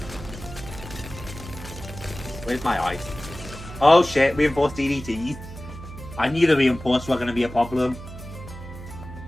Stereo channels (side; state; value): right; noise; hum, 13 dB below the sound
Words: Where's my ice? Oh shit, reinforced DDTs. I knew the reinforced were gonna be a problem.